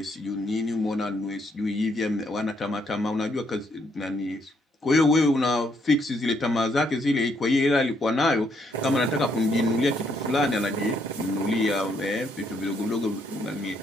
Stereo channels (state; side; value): normal; both; correlation 0.73